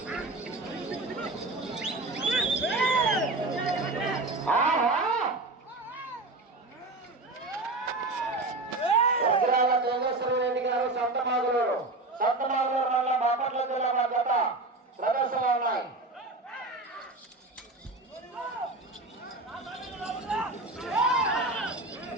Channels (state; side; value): quieter; left; 3.0 dB